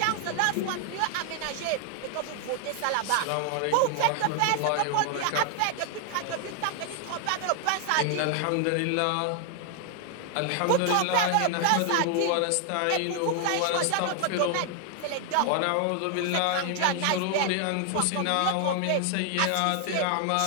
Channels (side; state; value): both; different; correlation 0.00